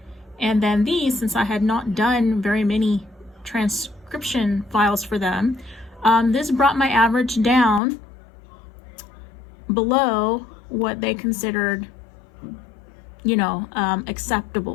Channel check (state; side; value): drops out; right; at 7.8 s